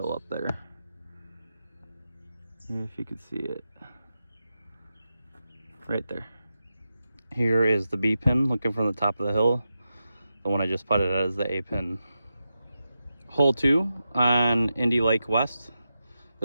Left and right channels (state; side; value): inverted; both; correlation -0.90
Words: up there, if you can see it right there. Here is the B pin looking from the top of the hill. The one I just putted at is the A pin. Hole 2 on Indy Lake West.